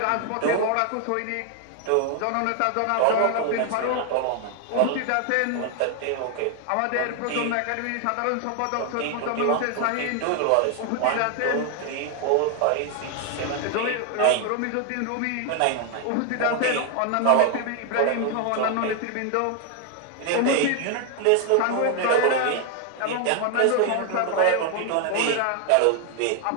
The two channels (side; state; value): both; different; correlation 0.00